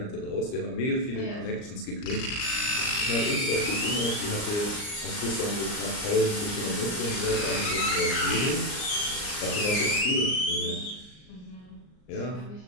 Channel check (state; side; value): late; right; 39 ms